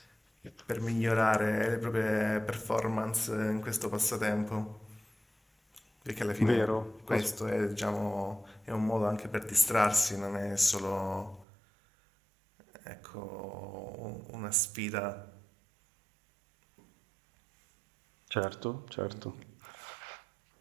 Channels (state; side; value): drops out; left; at 11.5 s